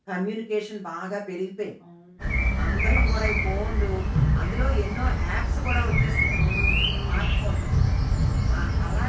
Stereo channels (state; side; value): identical; both; correlation 1.00